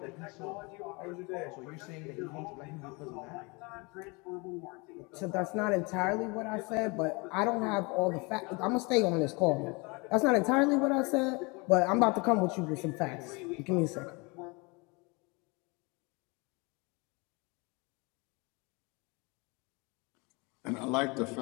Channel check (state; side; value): quieter; right; 28.3 dB